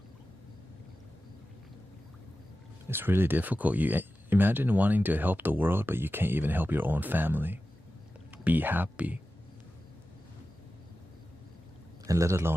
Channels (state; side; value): normal; both; correlation 0.93